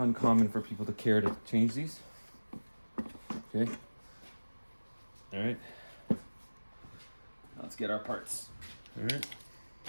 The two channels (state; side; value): inverted; both; correlation -1.00